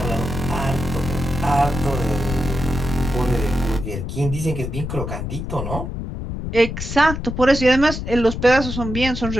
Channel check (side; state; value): left; noise; rumble, 5 dB below the sound